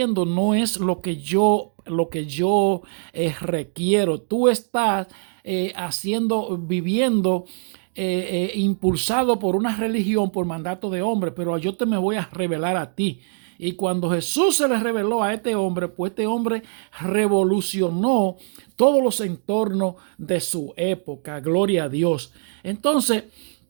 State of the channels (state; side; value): silent; left; digital silence